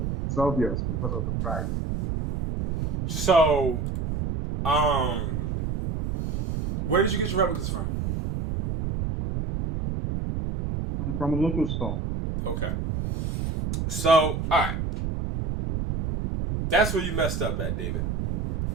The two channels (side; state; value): right; noise; rumble, 1 dB below the sound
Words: it's obvious because of the price. So, where did you get your replicas from? From a local store. Okay. So, all right. That's where you messed up at, David.